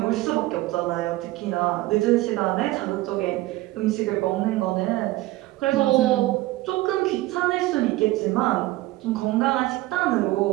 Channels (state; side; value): quieter; left; 18.0 dB